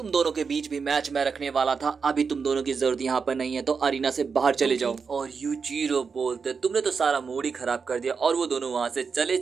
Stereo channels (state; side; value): quieter; left; 5.5 dB